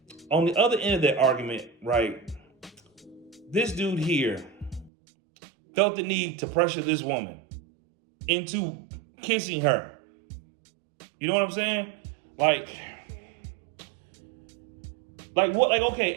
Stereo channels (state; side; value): drops out; left; at 4.9 s